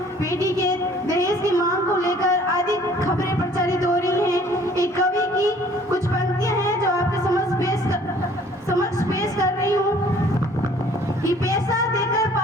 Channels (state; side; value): normal; both; correlation 0.55